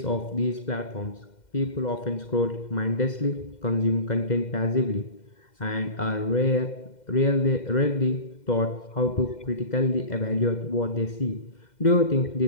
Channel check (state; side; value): late; right; 2.1 ms